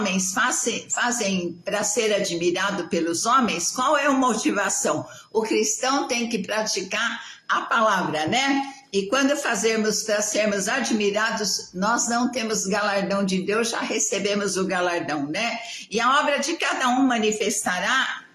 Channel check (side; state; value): both; identical; correlation 1.00